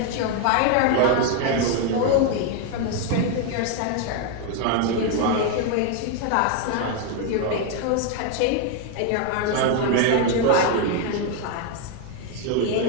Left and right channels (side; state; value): both; different; correlation 0.01